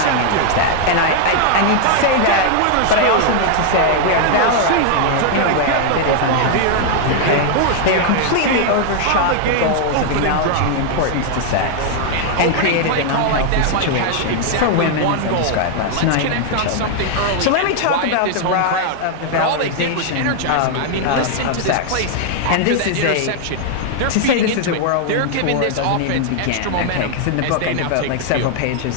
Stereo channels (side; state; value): both; different; correlation 0.00